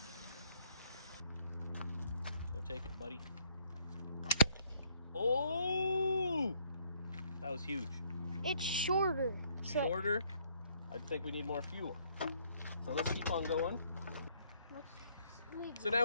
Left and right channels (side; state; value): both; inverted; correlation -0.66